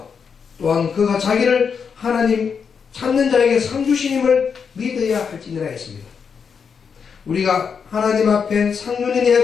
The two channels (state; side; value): quieter; right; 6.3 dB